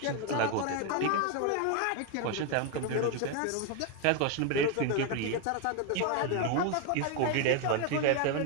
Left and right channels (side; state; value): both; different; correlation 0.01